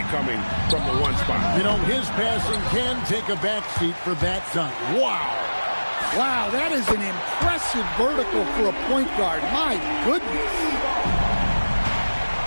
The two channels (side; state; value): both; inverted; correlation -1.00